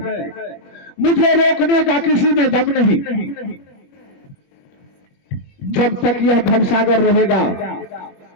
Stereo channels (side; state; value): right; late; 20 ms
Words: मुझे रोकने का किसी में दम नहीं। जब तक यह भवसागर रहेगा